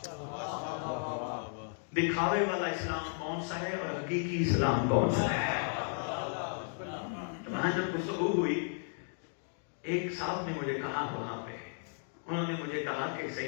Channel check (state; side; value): silent; right; digital silence